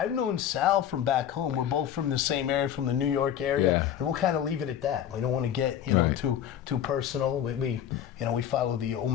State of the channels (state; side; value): quieter; right; 9.9 dB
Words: known Sal from back home. We're both from the same area, from the New York area, and we'll kind of leave it at that. We don't want to get too personal. We follow the